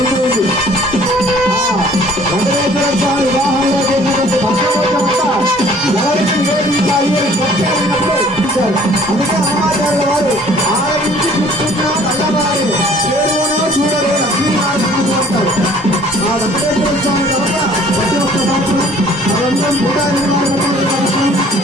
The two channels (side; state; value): both; normal; correlation 0.55